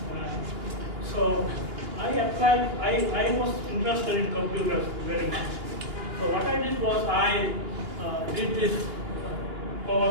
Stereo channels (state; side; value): late; left; 2.9 ms